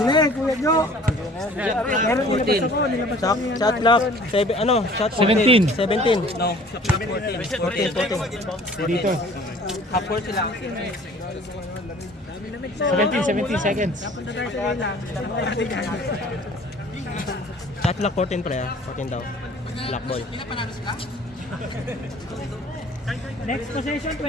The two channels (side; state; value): both; normal; correlation 0.51